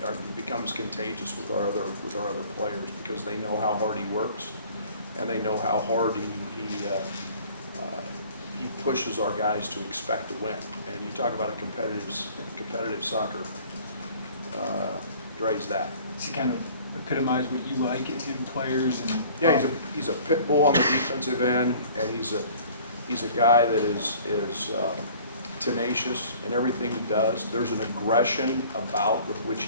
becomes contagious with our other players because they know how hard he works, and they know how hard he pushes our guys to expect to win. And you talk about a competitive soccer, Dre's that. Does he kind of epitomize what you like in players? And Yeah, he's a pit bull on the defensive end, and he's a guy that is tenacious in everything he does. There's an aggression about with which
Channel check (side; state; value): both; inverted; correlation -0.50